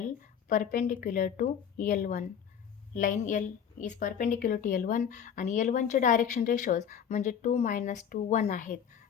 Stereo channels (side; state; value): right; quieter; 8.2 dB